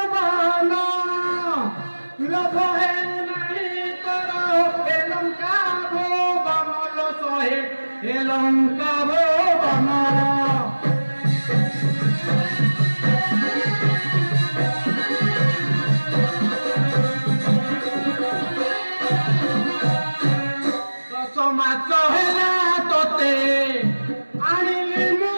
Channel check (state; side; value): inverted; both; correlation -1.00